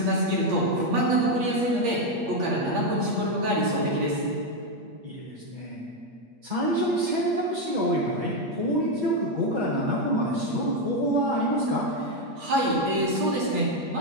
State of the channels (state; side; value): late; left; 8.5 ms